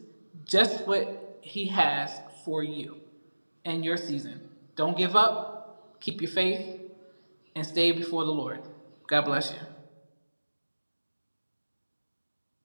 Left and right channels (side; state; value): both; inverted; correlation -1.00